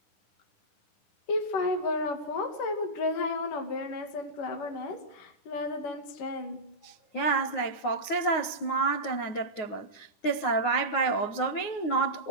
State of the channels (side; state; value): right; late; 9.5 ms